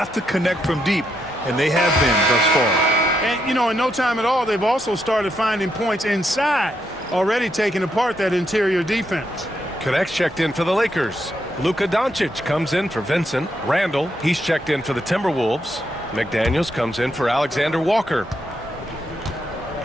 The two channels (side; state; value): both; normal; correlation 0.79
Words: to connect from deep, and they have been thus far. And, you know, in no time at all, they've also started finding points inside, already taking apart that interior defense. Connects checked in for the Lakers. Luka Doncic comes in for Vincent. Randall, he's checked in for the Timberwolves. McDaniels comes in for Alexander Walker.